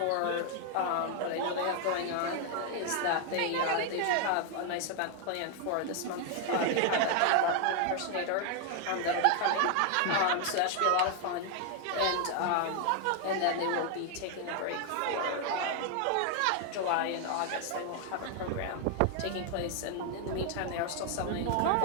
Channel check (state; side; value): different; both; correlation 0.00